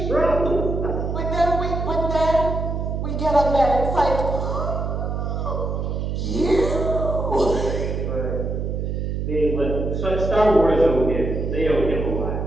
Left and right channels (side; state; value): right; noise; hum, 2 dB below the sound